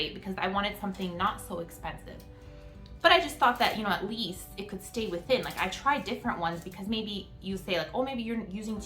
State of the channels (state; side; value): identical; both; correlation 1.00